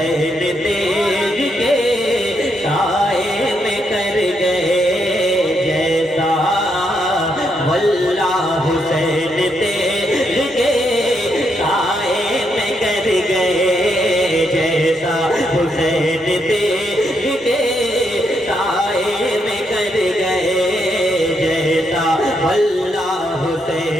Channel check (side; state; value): both; normal; correlation 0.78